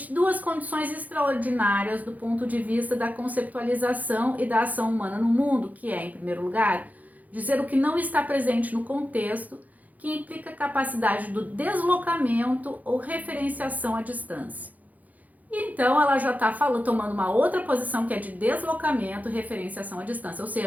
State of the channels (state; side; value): late; left; 0.079 ms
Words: duas condições extraordinárias do ponto de vista da conceptualização e da ação humana no mundo, que é, em primeiro lugar, dizer o que não está presente no contexto, que implica a capacidade do deslocamento ou referenciação à distância. E então ela já está tomando uma outra posição que é de deslocamento e referenciação à distância, ou